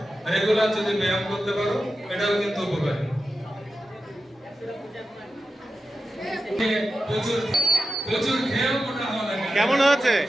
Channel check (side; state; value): both; normal; correlation 0.92